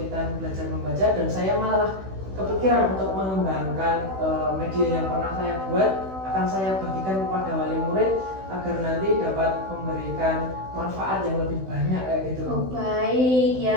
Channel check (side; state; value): left; late; 16 ms